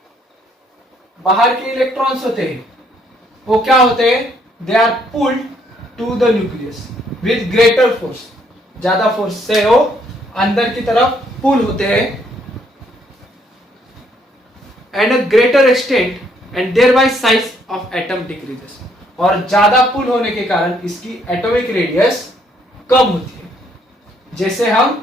बाहर के इलेक्ट्रॉन्स होते हैं वो क्या होते हैं, they are pulled to the nucleus with greater force, ज्यादा फोर्स से वो अंदर की तरफ पुल होते हैं and a greater extent and thereby size of atom decreases. और ज्यादा पुल होने के कारण इसकी एटॉमिक रेडियस कम होती है। जैसे हम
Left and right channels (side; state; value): both; normal; correlation 0.68